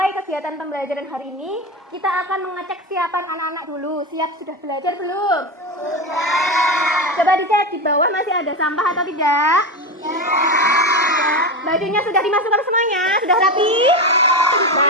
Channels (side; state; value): both; normal; correlation 0.18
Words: kegiatan pembelajaran hari ini, kita akan mengecek siapan anak-anak dulu. Siap sudah belajar belum? Sudah. Coba dicek di bawah masih ada sampah atau tidak? Tidak. Bajunya sudah dimasukkan semuanya? Sudah rapi?